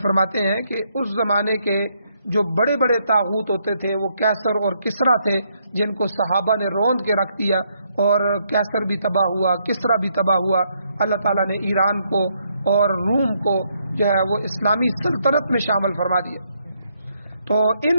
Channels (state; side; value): inverted; both; correlation -0.74